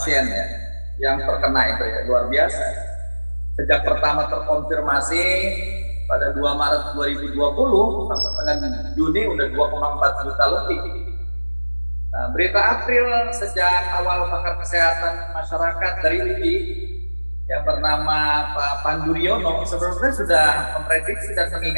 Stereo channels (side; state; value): both; inverted; correlation -1.00